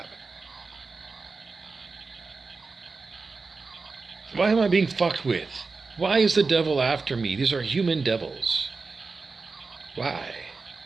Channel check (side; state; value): left; quieter; 4.2 dB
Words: Why am I being fucked with? Why is the devil after me? These are human devils. Why?